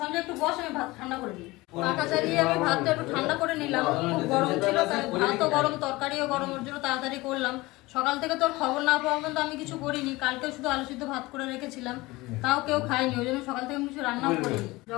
একটু বস, আমি ভাত ঠান্ডা করে দিই। পাখা চালিয়ে আমি ভাতটা একটু ঠান্ডা করে নিলাম, খুব গরম ছিল, তাই ভাতও গরম তরকারিও গরম, ওর জন্য তাড়াতাড়ি করলাম। সকাল থেকে তোর খবর না পাওয়া পর্যন্ত আমি কিছু করিনি, কালকেও শুধু আলু সিদ্ধ ভাত করে রেখেছিলাম, তাও কেউ খায়নি, ওই জন্য সকাল থেকে আমি কিছু রান্নাও করিনি।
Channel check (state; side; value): quieter; right; 21.0 dB